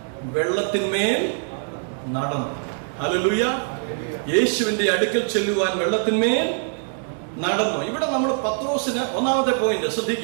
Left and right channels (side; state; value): left; silent; 63 dB below the other